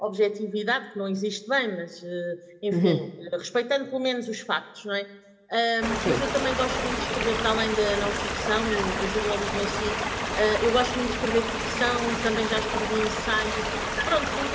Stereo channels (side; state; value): both; identical; correlation 1.00